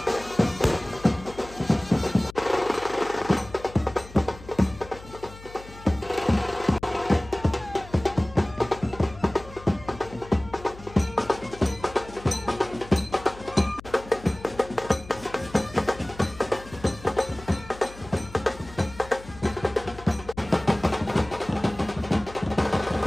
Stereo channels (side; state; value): left; noise; hum, 18 dB below the sound